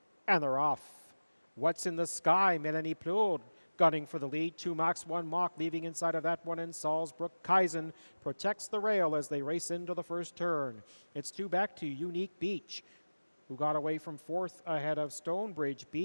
And they're off. What's in the Sky? Melanie Plourde gunning for the lead. 2 max, 1 mock, leaving inside of that one in Salzburg-Kaisen. Protects the rail as they race into the first turn. It's 2 back to Unique Beach, who got away from 4th ahead of Stonebridge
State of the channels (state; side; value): inverted; both; correlation -1.00